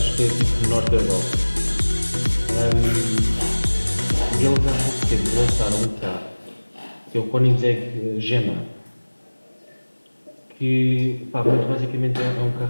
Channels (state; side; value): inverted; both; correlation -1.00